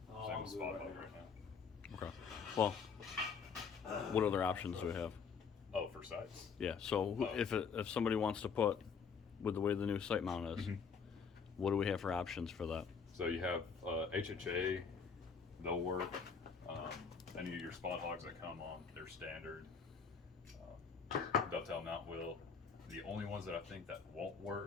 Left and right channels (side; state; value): right; quieter; 6.0 dB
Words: with Spotlight right now. okay. Well, what other options do we have? Oh, for sites. Yeah. So Oh. if somebody wants to put, with the way the new site mount is, Mhm. what do we have for options for that? So you have HHA, they'll work. Any of your spot hogs that come on, they're standard. Dovetail mount will. The only ones that I think that won't